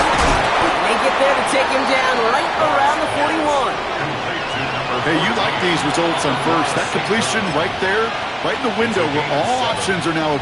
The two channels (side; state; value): both; identical; correlation 1.00